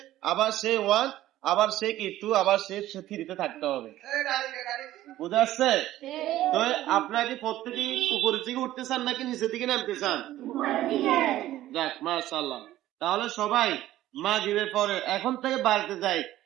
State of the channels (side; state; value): left; quieter; 14.4 dB